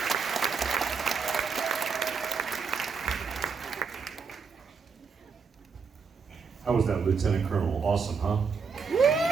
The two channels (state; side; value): quieter; left; 5.5 dB